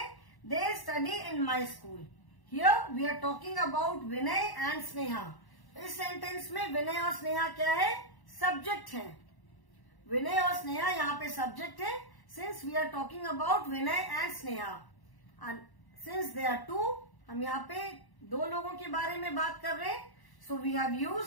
They study in my school. Here we are talking about Vinay and Sneha. इस सेंटेंस में विनय और स्नेहा क्या है? सब्जेक्ट है. विनय और स्नेहा यहाँ पे सब्जेक्ट है. Since we are talking about Vinay and Sneha, and since they are two, हम यहाँ पे दो लोगों के बारे में बात कर रहे हैं. So we have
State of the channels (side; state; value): right; late; 1.1 ms